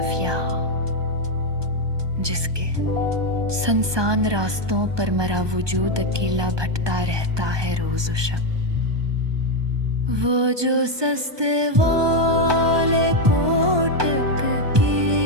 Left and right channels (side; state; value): left; late; 1.2 ms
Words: यहाँ, जिसके सुनसान रास्तों पर मेरा वजूद अकेला भटता रहता है रोज शब। वो जो सस्ते वाले कोटक